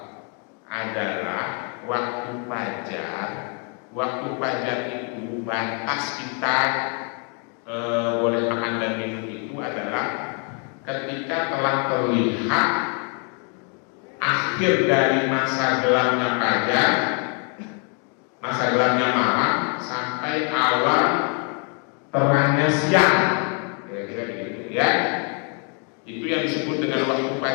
adalah waktu fajar. Waktu fajar itu batas kita boleh makan dan minum itu adalah ketika telah terlihat akhir dari masa gelapnya fajar, masa gelapnya malam, sampai awal terangnya siang, kira-kira begitu ya. Itu yang disebut dengan waktu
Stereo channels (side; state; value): right; quieter; 39.3 dB